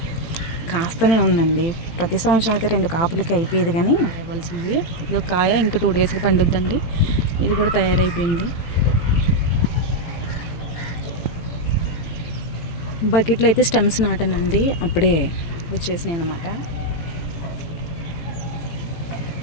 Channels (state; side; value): late; right; 18 ms